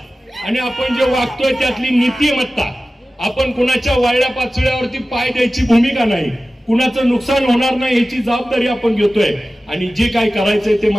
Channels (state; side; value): normal; both; correlation 0.95